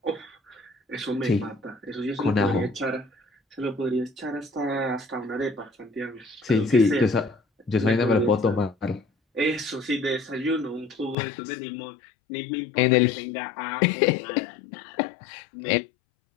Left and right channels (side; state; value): right; drops out; at 11.2 s